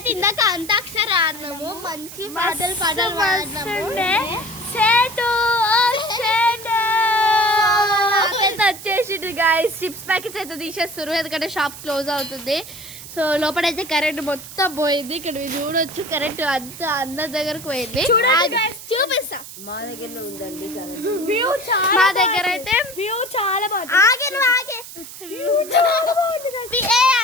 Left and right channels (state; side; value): noise; right; hiss, 14 dB below the sound